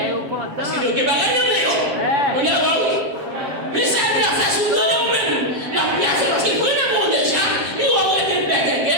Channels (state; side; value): late; left; 7.6 ms